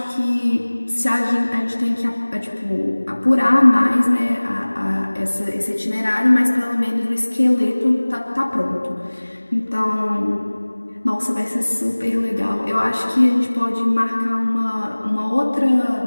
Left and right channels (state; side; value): inverted; both; correlation -1.00